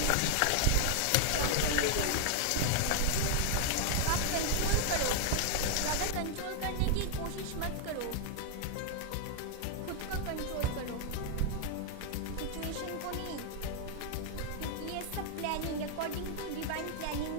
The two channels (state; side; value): different; both; correlation 0.00